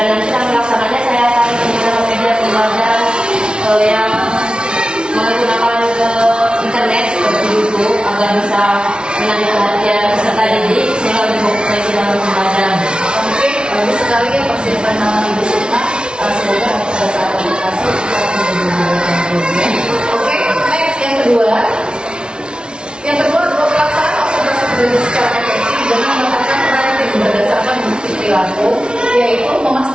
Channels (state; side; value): late; left; 0.055 ms